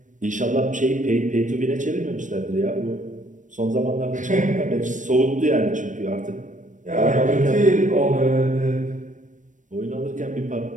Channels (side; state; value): left; late; 0.37 ms